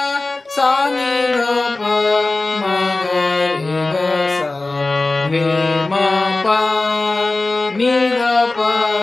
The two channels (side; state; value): right; quieter; 3.2 dB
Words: सा नि ध प म ग रे ग सा रे म प नि ध प।